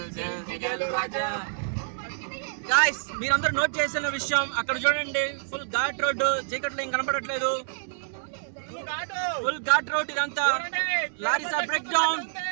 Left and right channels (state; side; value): silent; left; digital silence